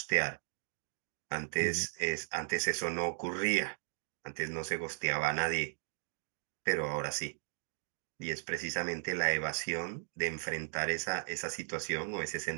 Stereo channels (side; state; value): left; silent; digital silence